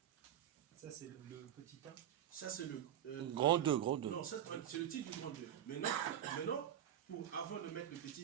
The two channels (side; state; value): left; quieter; 10.7 dB